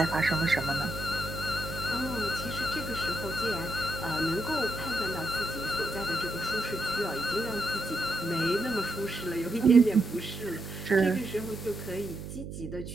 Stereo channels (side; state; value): right; noise; hum, 9 dB below the sound